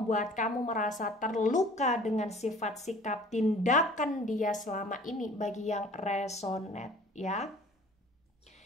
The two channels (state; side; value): normal; both; correlation 0.49